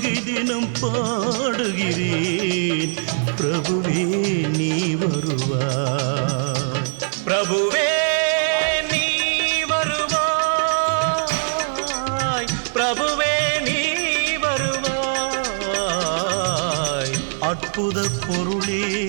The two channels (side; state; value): left; silent; digital silence